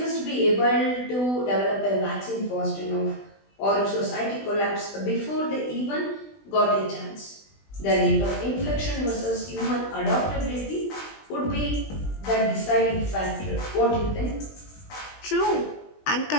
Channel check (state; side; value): late; right; 20 ms